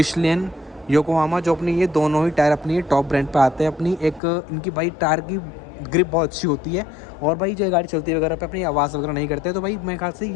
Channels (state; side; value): drops out; right; at 4.2 s